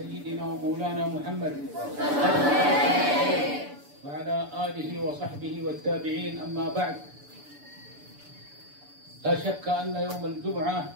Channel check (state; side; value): late; left; 6.9 ms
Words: wa maulana Muhammad wa ala alihi wa sahbihi wattabi'in. Amma ba'd. لا شك أن يوم الجمعة